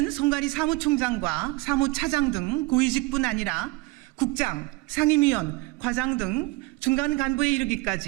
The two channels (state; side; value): quieter; left; 22.6 dB